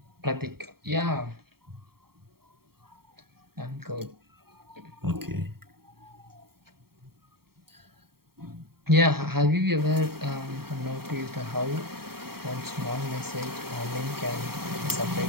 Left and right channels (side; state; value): left; late; 0.95 ms